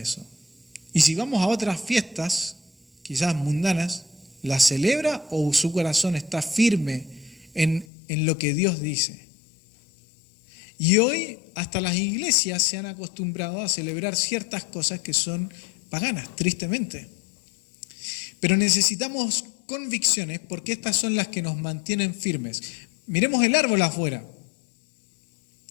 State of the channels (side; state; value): right; drops out; at 7.9 s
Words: Y si vamos a otras fiestas, quizás mundanas, ¿la celebra o su corazón está firme en lo que Dios dice? Y hoy hasta las iglesias se han acostumbrado a celebrar ciertas cosas que son paganas, tristemente. Pero necesitamos convicciones porque estas son las que nos mantienen firmes. Miremos el árbol afuera.